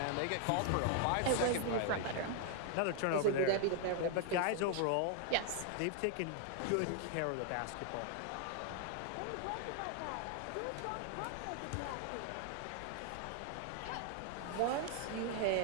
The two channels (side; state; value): both; different; correlation 0.00